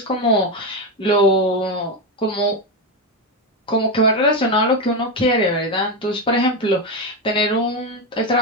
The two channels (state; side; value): normal; both; correlation 0.11